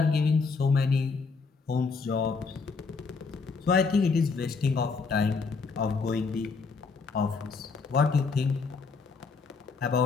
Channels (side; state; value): right; quieter; 4.7 dB